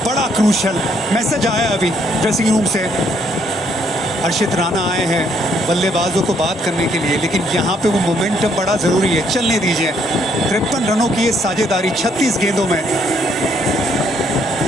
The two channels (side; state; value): both; normal; correlation 0.69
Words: बड़ा क्रूशल मैसेज आया अभी ड्रेसिंग रूम से। हर्षित राणा आए हैं बल्लेबाजों को बात करने के लिए, लेकिन यहाँ पे वो मोमेंटम बड़ा जरूरी है, चलने दीजिए। 53 रनों की ये साझेदारी 36 गेंदों में।